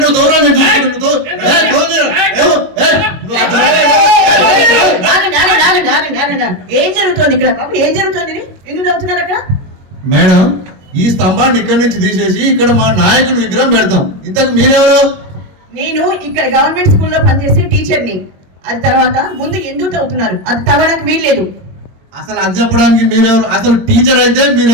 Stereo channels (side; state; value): left; late; 21 ms